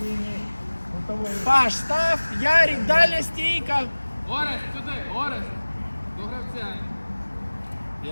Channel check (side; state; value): both; inverted; correlation -1.00